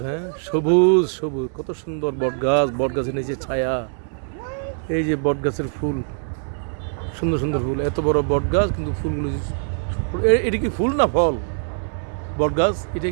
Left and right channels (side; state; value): left; silent; digital silence